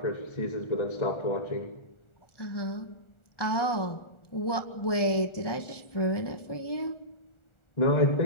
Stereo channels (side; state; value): right; late; 1.2 ms